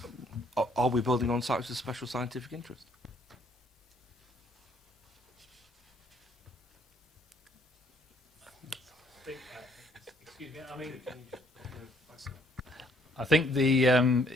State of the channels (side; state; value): both; normal; correlation 0.65